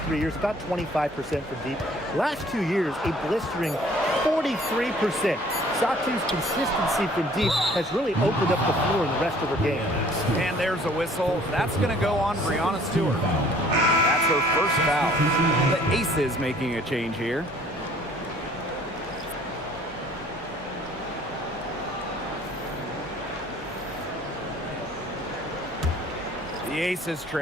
3 years, about 25% from deep. Last 2 years, a blistering 43%. Satu's consistency from deep has really opened up the floor in the rest of her game. And there's a whistle. That's going to go on Breonna Stewart. That's her first foul. The Aces making a change here. The Aces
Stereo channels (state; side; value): normal; both; correlation 0.55